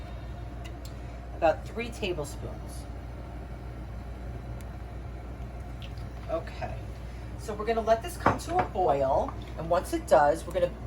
About 3 tablespoons. Okay. So we're going to let this come to a boil, and once it does, we're going to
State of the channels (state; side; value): identical; both; correlation 1.00